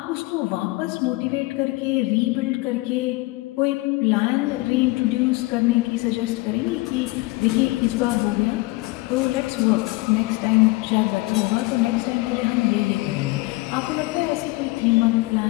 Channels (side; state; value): right; quieter; 22.2 dB